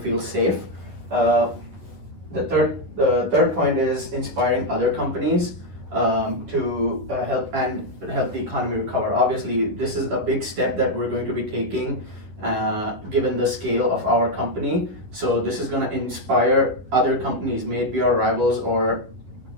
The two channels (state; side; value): late; left; 11 ms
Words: safe. The third point is inspiring other companies to help the economy recover. Obviously, this is a big step that we're going to be taking given the scale of our company. So this is going to inspire other companies, maybe our rivals or